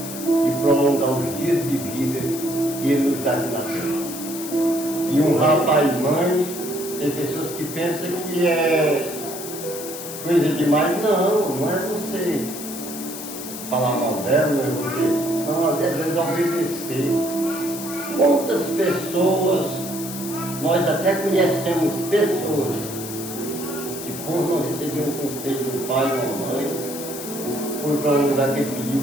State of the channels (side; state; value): left; noise; hiss, 10 dB below the sound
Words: de prolongar os dias de vida que ele nos dá de nascer. E honrar pai e mãe, tem pessoas que pensam que é coisa demais. Não, não é você falar mal dela, não é você. Não, às vezes é obedecer. Quantas pessoas, nós até conhecemos pessoas que por não receber um conselho do pai ou da mãe, foi para um lugar que ele pediu